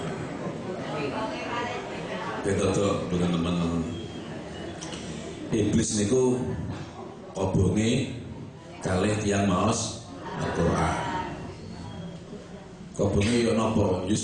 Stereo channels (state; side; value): identical; both; correlation 1.00